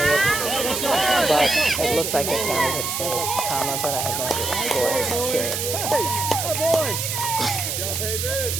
But it looks like it counted hit save, comma, but I have no idea what the score is, period.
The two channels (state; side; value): noise; right; hiss, 2 dB below the sound